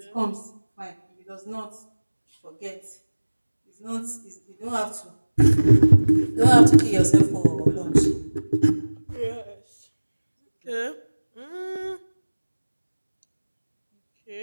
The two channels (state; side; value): inverted; both; correlation -1.00